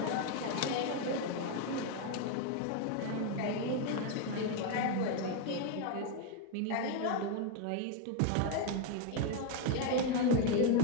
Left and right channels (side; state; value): both; different; correlation 0.02